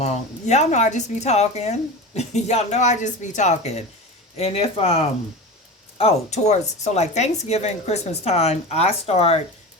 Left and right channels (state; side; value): normal; both; correlation 0.28